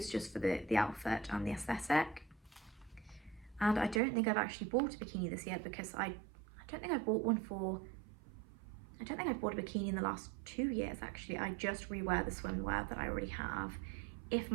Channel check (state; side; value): drops out; left; at 4.0 s